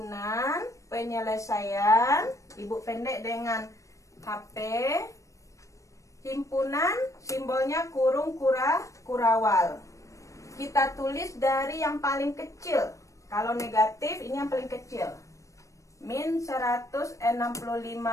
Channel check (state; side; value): late; right; 0.15 ms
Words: penyelesaian, ibu pendek dengan HP. Himpunan simbolnya kurung kurawal. Kita tulis dari yang paling kecil. Kalau negatif ini yang paling kecil. Min 165